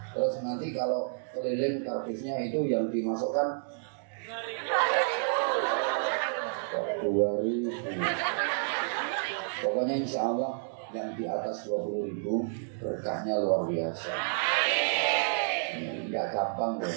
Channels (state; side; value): silent; left; digital silence